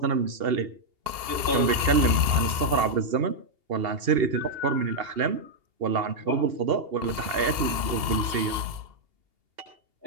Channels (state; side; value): late; left; 2.8 ms